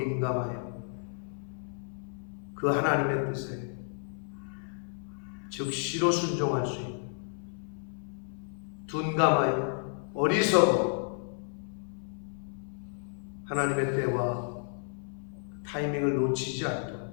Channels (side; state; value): right; silent; 57 dB below the other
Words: 그 하나님의 뜻에 즉시로 순종할 수 있는 둔감하여 어리석어 하나님의 때와 타이밍을 놓치지 않도록